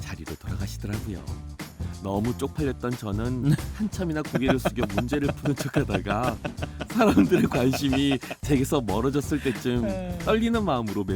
돌아가시더라고요. 너무 쪽팔렸던 저는 한참이나 고개를 숙여 문제를 푸는 척하다가 사람들의 관심이 제게서 멀어졌을 때쯤 떨리는 마음으로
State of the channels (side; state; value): both; identical; correlation 1.00